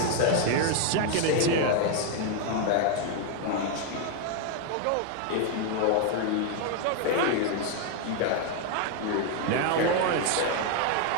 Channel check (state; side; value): different; both; correlation 0.01